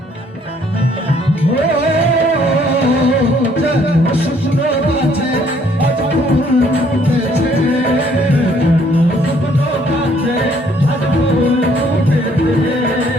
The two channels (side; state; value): both; normal; correlation 0.64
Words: শুকনো গাছে আজ ফুল ফুটেছে, শুকনো গাছে আজ ফুল ফুটেছে,